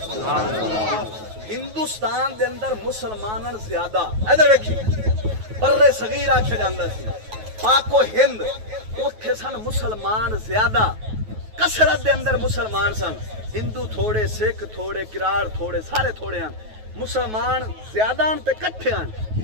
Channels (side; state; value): left; late; 9.3 ms